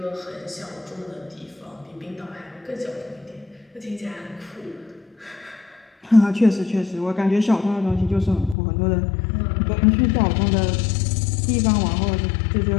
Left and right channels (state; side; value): drops out; right; at 8.6 s